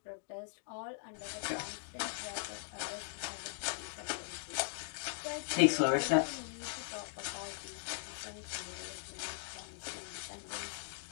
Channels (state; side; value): silent; right; digital silence